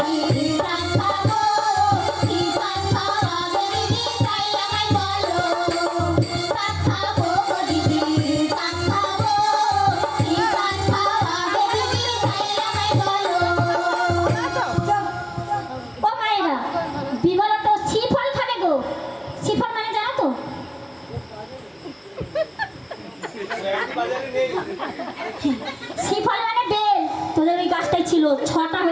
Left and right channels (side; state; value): both; identical; correlation 1.00